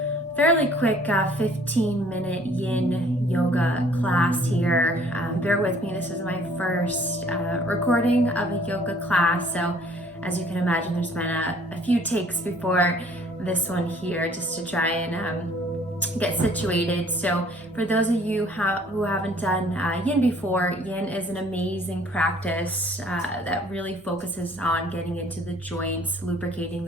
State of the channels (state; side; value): normal; both; correlation 0.57